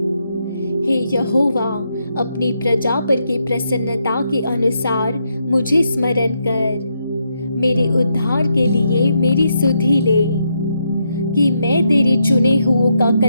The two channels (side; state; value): both; inverted; correlation -0.80